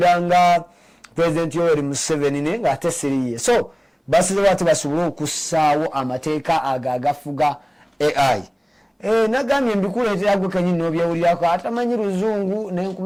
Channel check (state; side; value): identical; both; correlation 1.00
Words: nga President Yoweri Museveni naye nga ate siriye. So basizewo ate basobole okussaawo amateeka ago agafuga AI. Nagambye mbikuleetera gwe kennyini n'obyewulirako atamanyi luzungu ne